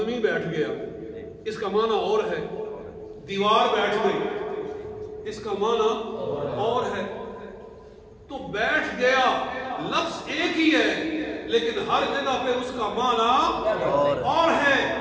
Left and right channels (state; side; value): identical; both; correlation 1.00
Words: بیٹھ گیا, اس کا معنی اور ہے. دیوار بیٹھ گئی, اس کا معنی اور ہے. تو بیٹھ گیا لفظ ایک ہی ہے لیکن ہر جگہ پہ اس کا معنی اور ہے.